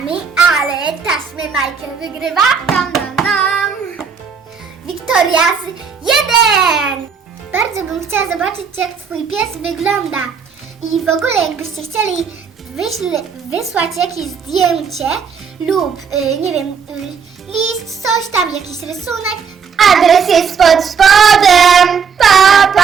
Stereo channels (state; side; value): quieter; left; 6.3 dB